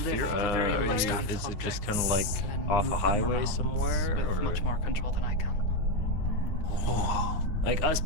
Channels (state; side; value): late; right; 9.7 ms